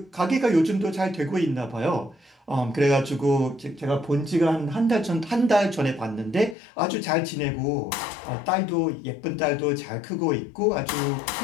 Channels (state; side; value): drops out; right; at 6.6 s